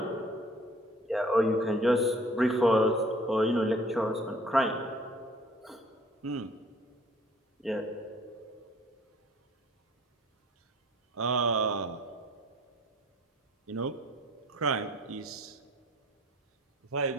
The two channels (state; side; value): normal; both; correlation 0.53